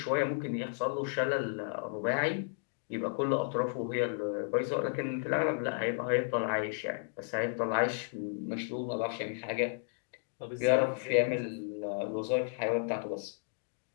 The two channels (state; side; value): silent; right; digital silence